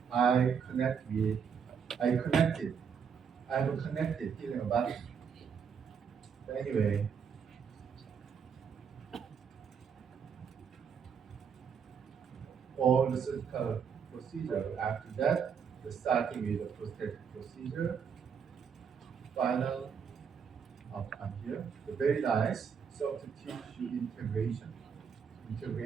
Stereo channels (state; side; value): quieter; left; 6.8 dB